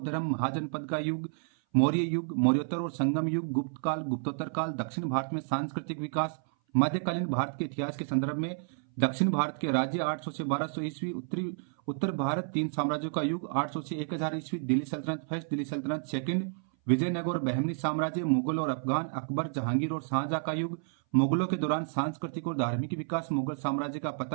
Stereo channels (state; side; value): silent; left; 58 dB below the other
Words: धर्म, महाजनपद का युग, मौर्य युग, मौर्योत्तर और संगम युग, गुप्त काल, गुप्तोत्तर काल, दक्षिण भारत में सांस्कृतिक विकास, मध्यकालीन भारत के इतिहास के संदर्भ में दक्षिण भारत के राज्य 800 से 1200 ईस्वी, उत्तर भारत 3 साम्राज्यों का युग 800 से 1000 ईस्वी, दिल्ली सल्तनत फर्स्ट, दिल्ली सल्तनत सेकंड, विजयनगर और बहमनी साम्राज्य, मुगल और अफगान, अकबर, जहांगीर और शाहजहां का युग, मुगलों के दौरान सांस्कृतिक और धार्मिक विकास, मुगल साम्राज्य का